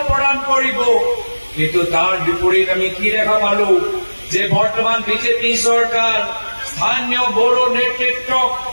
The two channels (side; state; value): both; inverted; correlation -1.00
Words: প্ৰদান কৰিব কিন্তু তাৰ বিপৰীত আমি কি দেখা পালো যে বৰ্তমান বিজেপি চৰকাৰ স্থানীয় বড়ো নেতৃত্বক